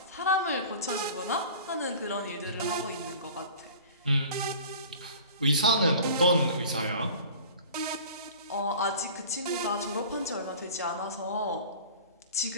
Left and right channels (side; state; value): both; inverted; correlation -0.42